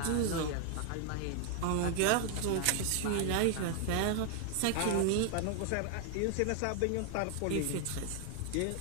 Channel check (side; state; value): both; different; correlation 0.00